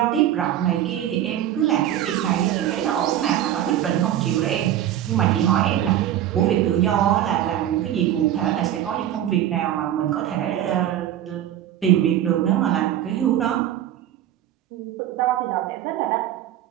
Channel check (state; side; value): quieter; left; 11.7 dB